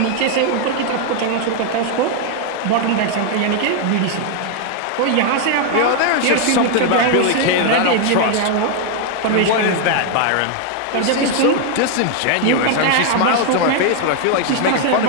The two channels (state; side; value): different; both; correlation 0.00